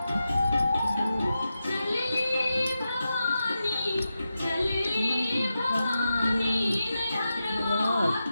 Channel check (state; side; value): inverted; both; correlation -0.90